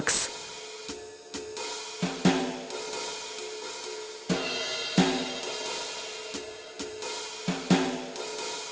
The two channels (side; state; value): both; identical; correlation 1.00